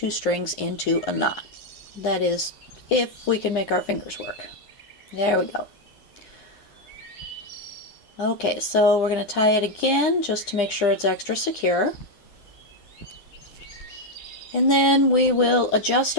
strings into a knot. That is, if we can make our fingers work. There we go. Okay, so we're going to tie it again just to make sure it's extra secure. And then we will adjust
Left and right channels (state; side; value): late; right; 10 ms